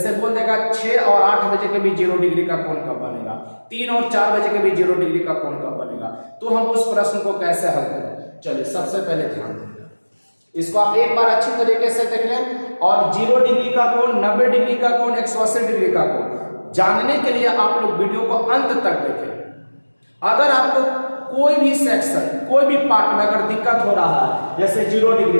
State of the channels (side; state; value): both; inverted; correlation -1.00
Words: बोल देगा 6 और 8 बजे के बीच जीरो डिग्री का कोण कब बनेगा, 3 और 4 बजे के बीच जीरो डिग्री का कोण कब बनेगा, तो हम उस प्रश्न को कैसे हल करें। चलिए सबसे पहले ध्यान दें, इसको आप एक बार अच्छी तरीके से देख लें। और 0 डिग्री का कोण, 90 डिग्री का कोण, 180 डिग्री का कोण जानने के लिए आप लोग वीडियो को अंत तक देखें। अगर आपको कोई भी सेक्शन, कोई भी पार्ट में अगर दिक्कत हो रहा है, जैसे 0 डिग्री